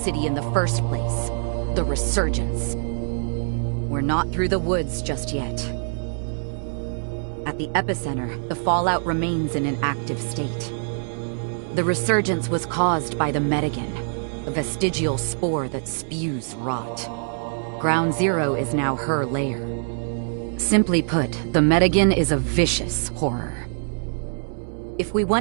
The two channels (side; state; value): left; silent; digital silence